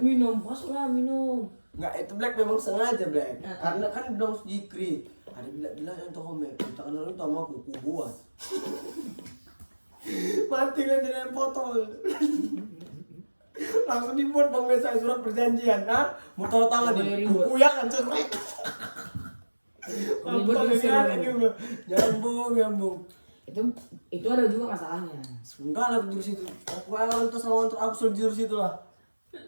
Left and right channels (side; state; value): both; inverted; correlation -1.00